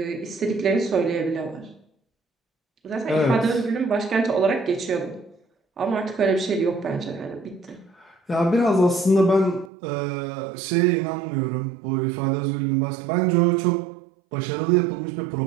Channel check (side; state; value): left; drops out; at 9.7 s